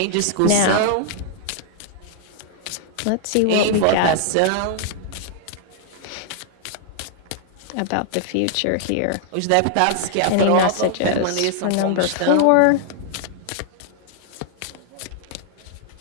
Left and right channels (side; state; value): both; different; correlation -0.01